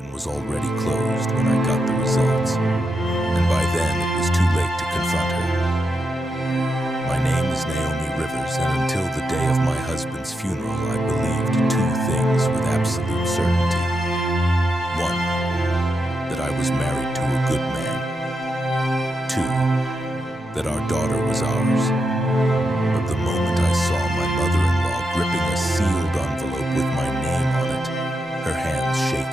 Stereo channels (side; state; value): both; normal; correlation 0.85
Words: was already closed when I got the results, and by then it was too late to confront her. My name is Naomi Rivers, and until the day of my husband's funeral, I believed two things with absolute certainty. One, that I was married to a good man. Two, that our daughter was ours. But the moment I saw my mother-in-law gripping a sealed envelope with my name on it, her hands